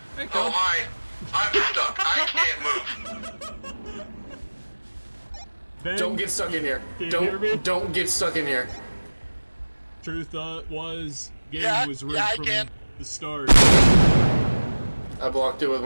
Hey, Oh, Cole. hi. I'm stuck. I can't move. Ben, Don't get stuck in here. Can you hear me? Don't get stuck in here. Truth was, game Yeah, was rigged yeah, I from can. the start. I blocked it with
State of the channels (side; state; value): both; inverted; correlation -1.00